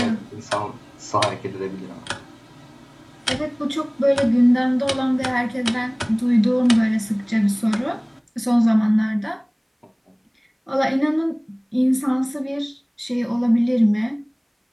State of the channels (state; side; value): identical; both; correlation 1.00